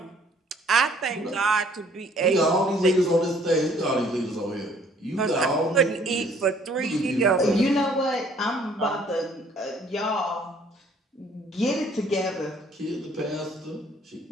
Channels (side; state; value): both; normal; correlation 0.60